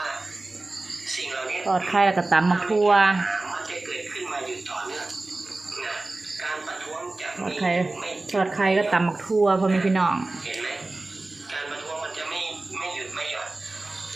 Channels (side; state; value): left; quieter; 3.1 dB